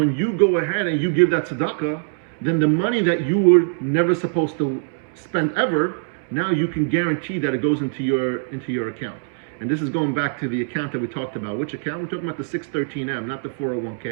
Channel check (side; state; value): left; silent; 64 dB below the other